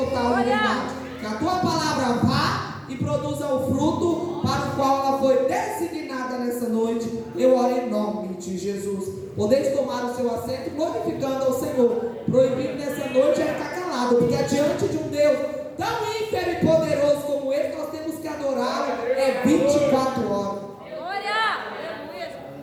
liberdade. Que a tua palavra vá e produza o fruto para o qual ela foi designada nessa noite. Eu oro em nome de Jesus. Podeis tomar o seu assento, glorificando ao Senhor. Proibido nessa noite é ficar calado, porque diante de um Deus tão ínfimo e poderoso como Ele, nós temos que adorar 24 horas.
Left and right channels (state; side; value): identical; both; correlation 1.00